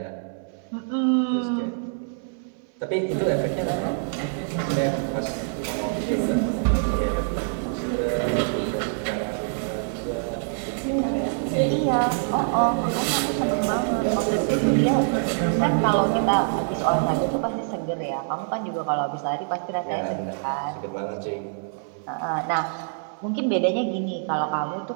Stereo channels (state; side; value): silent; left; 62 dB below the other